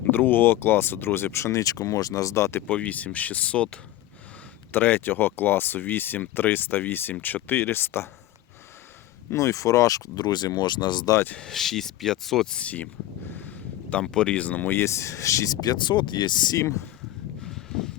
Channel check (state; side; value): quieter; right; 15.0 dB